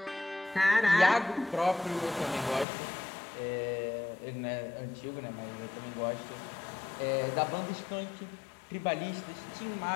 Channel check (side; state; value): right; drops out; at 2.7 s